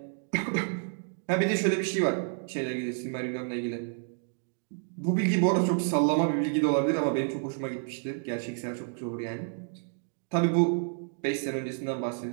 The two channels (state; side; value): silent; left; 58 dB below the other